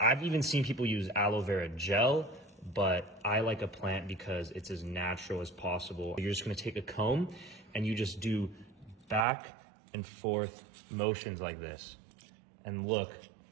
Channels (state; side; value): drops out; left; at 9.2 s